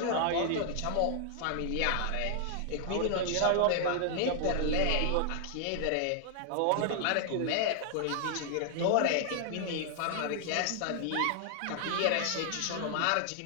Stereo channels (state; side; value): different; both; correlation 0.00